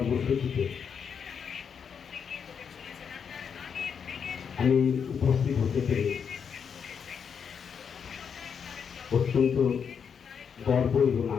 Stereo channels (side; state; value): right; quieter; 6.9 dB